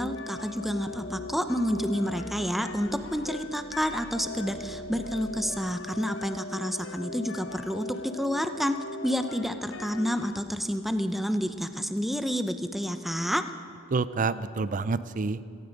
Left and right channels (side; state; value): both; normal; correlation 0.80